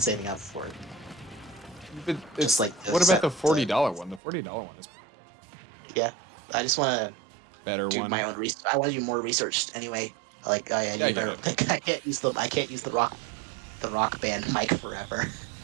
saving up for it. But Just it's like the what about set. the $40 one? The $40 one is Yeah, I just want to better do one. my own research. I want to do more research anyway. Like, oh yeah, Yeah, I you get better. it. Like, I can't use the rock band mic forever.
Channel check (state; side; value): drops out; left; at 4.2 s